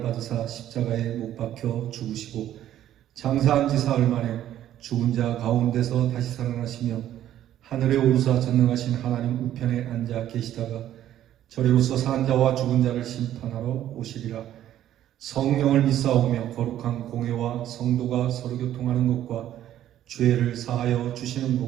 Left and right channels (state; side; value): quieter; left; 12.0 dB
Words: 받으사 십자가에 못 박혀 죽으시고 장사한 지 사흘 만에 죽은 자 가운데서 다시 살아나시며 하늘에 오르사 전능하신 하나님 우편에 앉아 계시다가 저리로서 산 자와 죽은 자를 심판하러 오시리라. 성령을 믿사오며 거룩한 공회와 성도가 서로 교통하는 것과 죄를 사하여 주시는